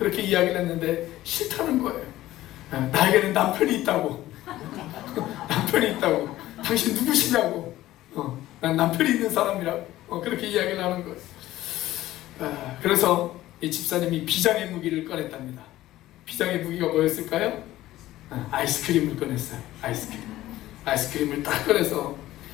이야기를 했는데 싫다는 거예요. 나에게는 남편이 있다고. 남편이 있다고. 당신 누구시냐고. 난 남편이 있는 사람이라고. 그렇게 이야기를 하는 거예요. 그래서 이 집사님이 비장의 무기를 꺼냈답니다. 비장의 무기가 뭐였을까요? 아이스크림을 꺼냈어요. 아이스크림을 딱 꺼내서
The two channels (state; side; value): quieter; right; 15.4 dB